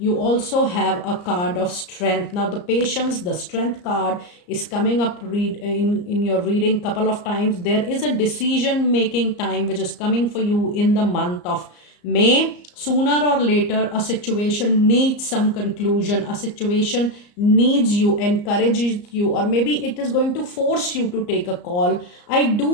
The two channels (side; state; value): right; late; 34 ms